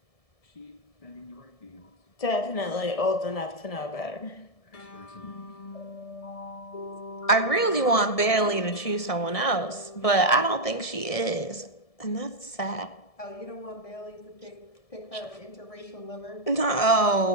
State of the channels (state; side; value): late; right; 1.7 ms